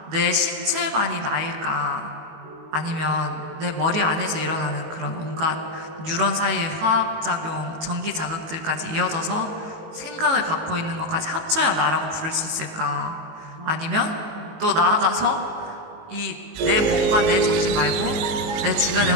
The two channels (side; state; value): left; late; 19 ms